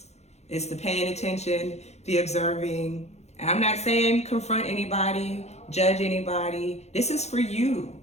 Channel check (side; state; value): right; late; 0.32 ms